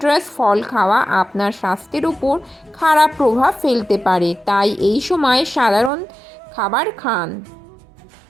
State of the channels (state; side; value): drops out; left; at 5.9 s